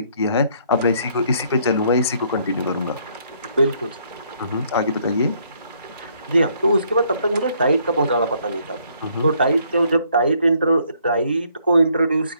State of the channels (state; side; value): inverted; both; correlation -0.67